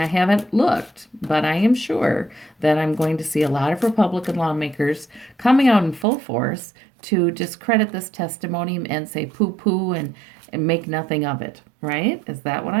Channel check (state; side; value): drops out; left; at 6.1 s